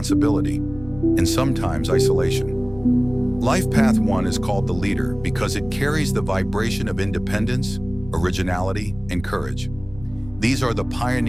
and sometimes isolation. Life path 1 is called the leader because it carries the vibration of independence, originality, and courage. These are the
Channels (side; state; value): left; noise; rumble, 17 dB below the sound